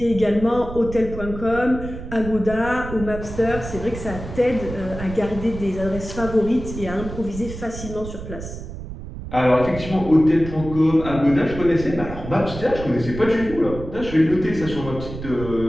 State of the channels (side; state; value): right; noise; rumble, 10 dB below the sound